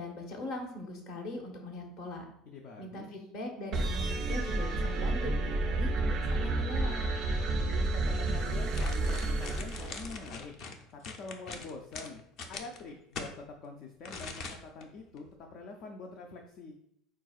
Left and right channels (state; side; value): normal; both; correlation 0.73